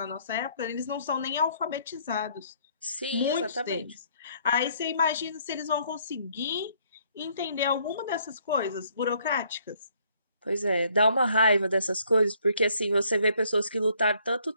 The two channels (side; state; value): both; inverted; correlation -0.65